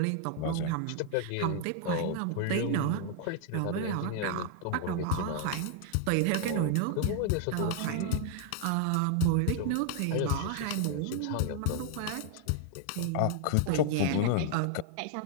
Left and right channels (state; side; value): different; both; correlation 0.00